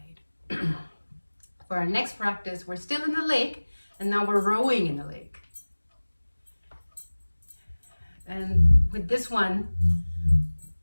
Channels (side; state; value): both; inverted; correlation -1.00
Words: right. For our next practice, we're still in the lake, and now we're rowing in the lake. And with this one,